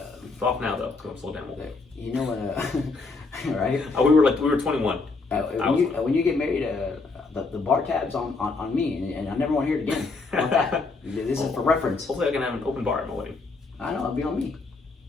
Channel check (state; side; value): quieter; right; 3.9 dB